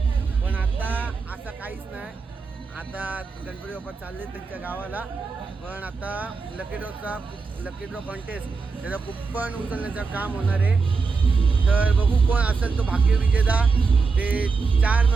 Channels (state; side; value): quieter; left; 4.7 dB